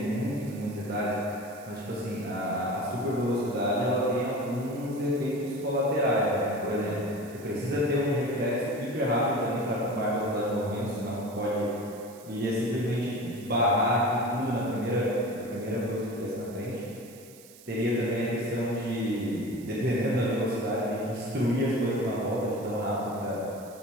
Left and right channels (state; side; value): noise; right; hiss, 21 dB below the sound